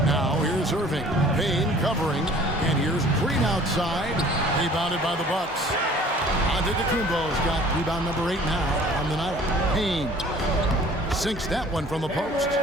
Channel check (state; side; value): normal; both; correlation 0.50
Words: Now here's Irving. Payne covering. And here's Green outside. Rebounded by the Bucks. Antetokounmpo's got rebound number 8 now on the night. Payne sinks that one from the post.